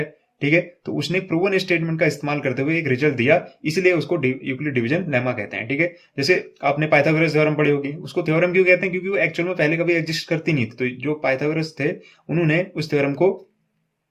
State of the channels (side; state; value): both; identical; correlation 1.00